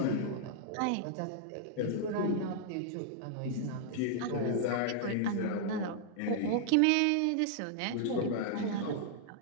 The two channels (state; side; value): different; both; correlation -0.01